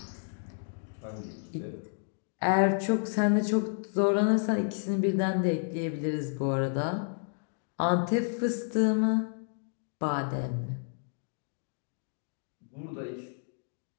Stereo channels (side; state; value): right; silent; digital silence